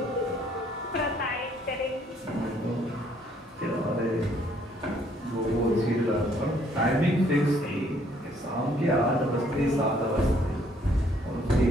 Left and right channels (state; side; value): normal; both; correlation 0.65